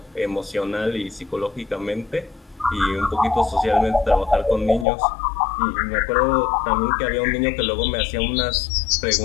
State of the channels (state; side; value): drops out; right; at 4.9 s